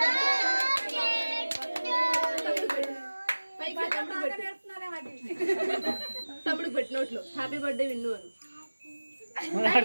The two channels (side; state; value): both; inverted; correlation -1.00